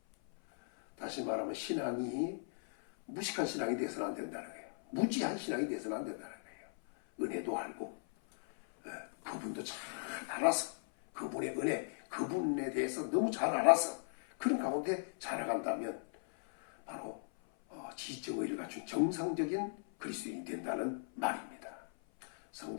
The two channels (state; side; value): silent; right; 53 dB below the other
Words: 다시 말하면 신앙이 무식한 신앙이 되어서는 안 된다는 거예요. 무지한 신앙이 되어서는 안 된다는 거예요. 은혜도 알고 그분도 잘 알아서 그분의 은혜, 그분에 대해서 너무 잘 알아서 그런 가운데 자라간다면 바로 지적의를 갖춘 정상적인 그리스도인이 된다는 말입니다.